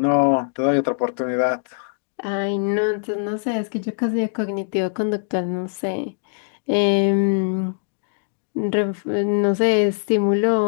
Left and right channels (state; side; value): silent; right; digital silence